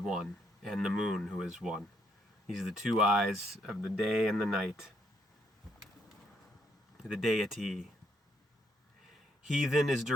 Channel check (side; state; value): both; normal; correlation 0.73